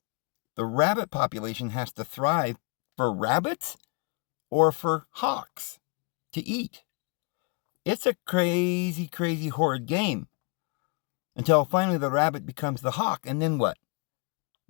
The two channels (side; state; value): right; quieter; 32.8 dB